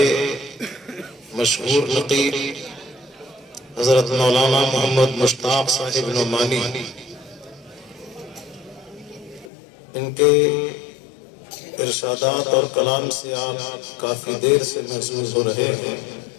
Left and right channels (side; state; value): right; drops out; at 9.5 s